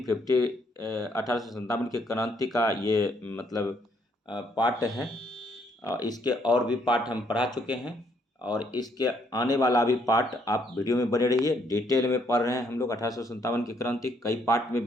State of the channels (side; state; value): both; normal; correlation 0.70